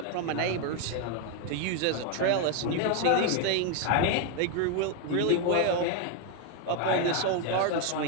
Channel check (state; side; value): different; both; correlation 0.01